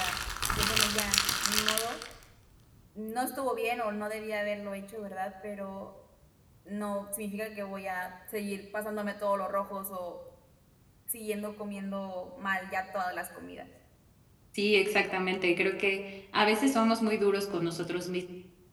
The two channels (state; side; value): identical; both; correlation 1.00